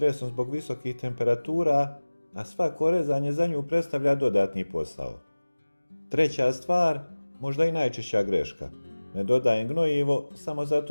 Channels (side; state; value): both; inverted; correlation -1.00